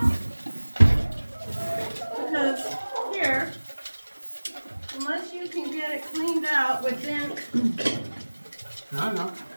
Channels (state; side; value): inverted; both; correlation -1.00